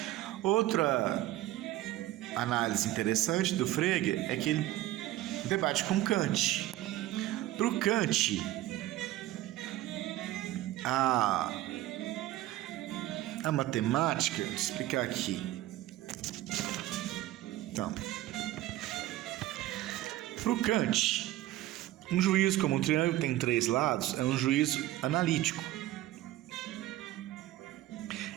Outra análise interessante do Frege é que ele debate com Kant. Para o Kant, a matemática, vou explicar aqui. Então, para o Kant, um juízo como um triângulo tem 3 lados é um juízo analítico.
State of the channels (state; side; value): quieter; left; 15.1 dB